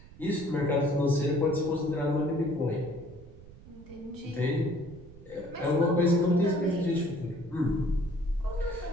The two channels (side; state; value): right; noise; rumble, 19 dB below the sound